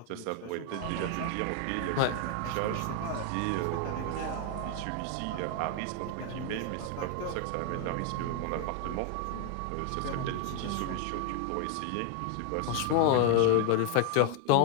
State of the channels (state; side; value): different; both; correlation 0.00